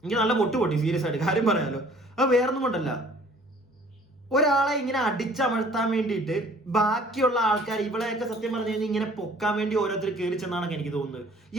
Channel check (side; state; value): both; normal; correlation 0.53